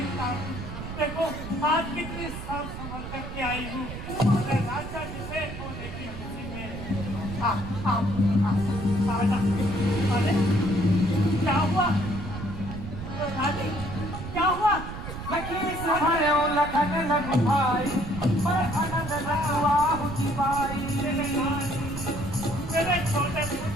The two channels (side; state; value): right; noise; rumble, 8 dB below the sound